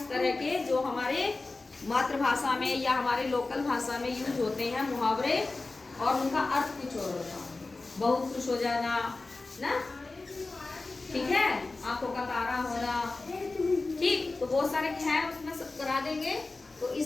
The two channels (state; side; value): quieter; right; 3.4 dB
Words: तरह के जो हमारे मातृभाषा में या हमारे लोकल भाषा में यूज होते हैं मुहावरे, और उनका अर्थ कुछ और होता है। बहुत खुश हो जाना ना, ठीक है, आंखों का तारा होना। ठीक, तो बहुत सारे हैं उसमें सब करा देंगे। तो